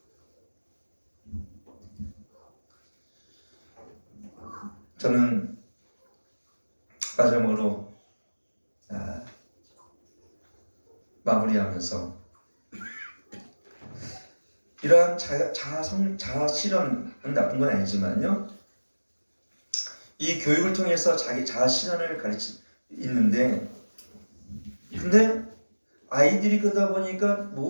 저는 마지막으로 마무리하면서 이러한 자아 실현은 나쁜 건 아니지만요, 이 교육을 통해서 자기 자아 실현을 가르치 있는데, 근데 아이들이 그러다 보니까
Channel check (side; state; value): both; inverted; correlation -1.00